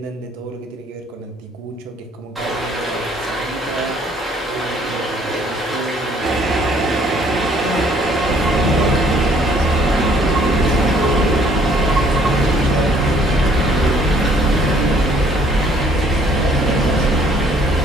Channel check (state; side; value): normal; both; correlation 0.61